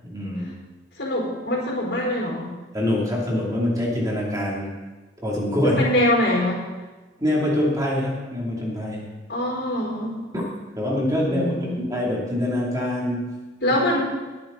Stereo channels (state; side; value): normal; both; correlation 0.48